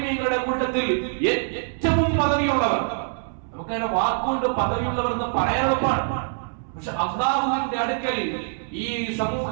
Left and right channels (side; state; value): left; silent; 62 dB below the other